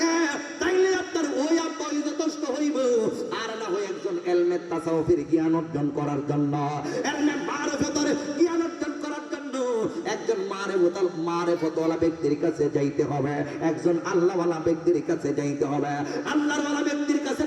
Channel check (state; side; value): identical; both; correlation 1.00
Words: তাইলে আপনার ওই আব্বাই যথেষ্ট হইব, আর না হয় একজন ইলমে তাসাউফের জ্ঞান অর্জন করার জন্য ইলমে মারিফাতের জ্ঞান অর্জন করার জন্য একজন মারিফাতওয়ালা ব্যক্তির কাছে যাইতে হবে, একজন আল্লাহওয়ালা ব্যক্তির কাছে যাইতে হবে। আল্লাহওয়ালা ব্যক্তির কাছে